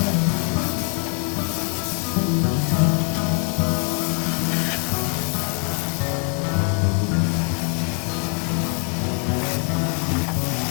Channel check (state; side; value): quieter; right; 36.7 dB